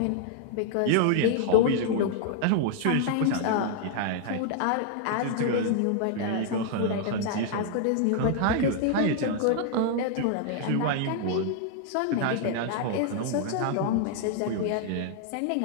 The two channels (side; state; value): both; different; correlation 0.00